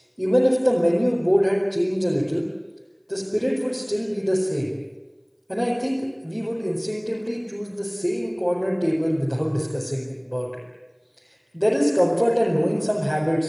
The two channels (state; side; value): identical; both; correlation 1.00